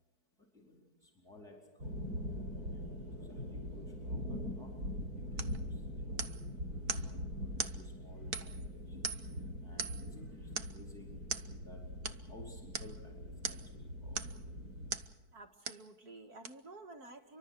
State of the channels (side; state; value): left; late; 4.5 ms